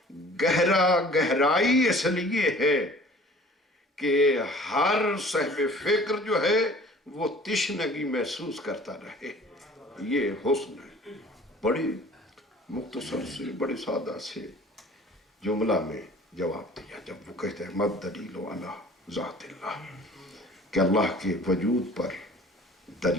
گہرائی اس لیے ہے کہ ہر صاحب فکر جو ہے وہ تشنگی محسوس کرتا رہے. یہ حسن ہے. بڑی مختصر سے بڑے سادہ سے جملہ میں جواب دیا جب وہ کہتے ہیں مد دلیل علی ذات اللہ، کہ اللہ کے وجود پر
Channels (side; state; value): both; normal; correlation 0.48